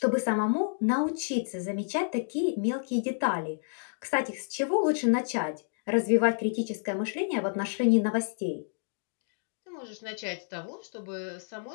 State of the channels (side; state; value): right; silent; digital silence